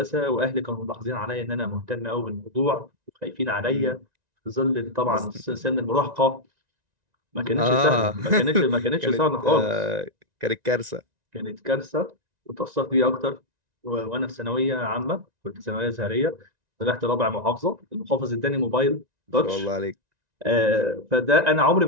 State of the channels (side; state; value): left; late; 1.9 ms